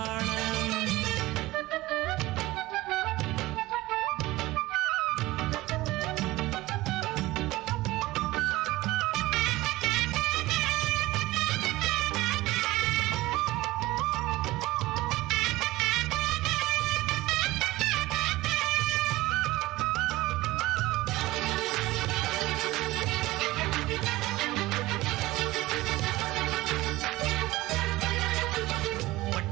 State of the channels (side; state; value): left; quieter; 18.6 dB